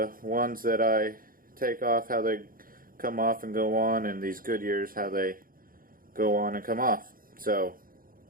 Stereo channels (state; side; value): late; left; 0.41 ms